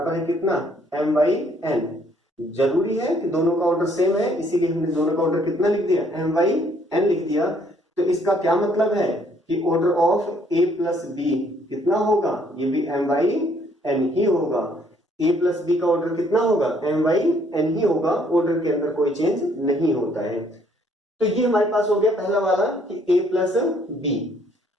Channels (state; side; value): normal; both; correlation 0.65